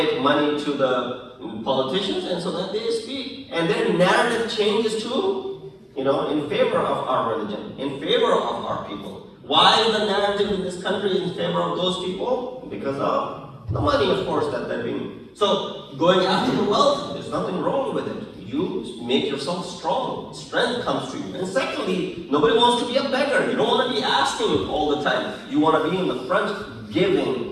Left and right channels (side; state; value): both; identical; correlation 1.00